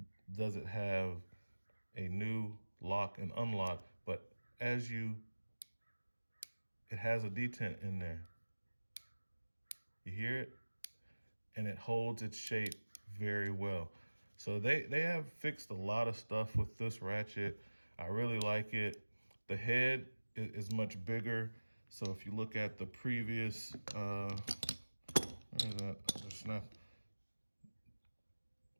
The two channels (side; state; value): both; inverted; correlation -1.00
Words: does it have a new lock and unlock, but it has a detent in there. You hear it? And it holds its shape very well. So they have fixed a lot of stuff with this ratchet. I really like it. The head is much bigger. So if you look at the previous, where is that? Snap